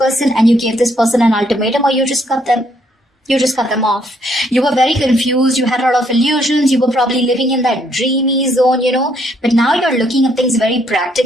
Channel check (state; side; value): normal; both; correlation 0.70